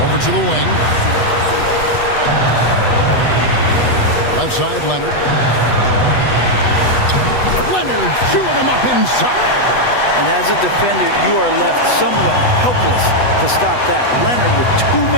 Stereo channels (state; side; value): late; right; 8.1 ms